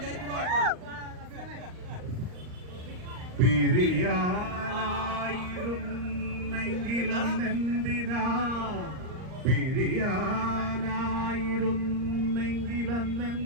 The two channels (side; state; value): left; late; 39 ms